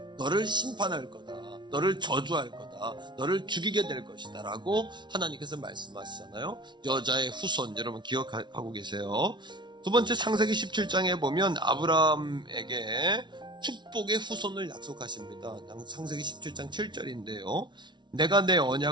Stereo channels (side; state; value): left; late; 0.22 ms